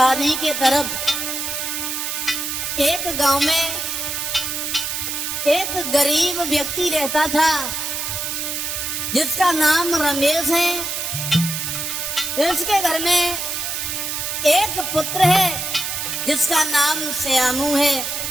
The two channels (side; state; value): right; noise; hiss, 3 dB below the sound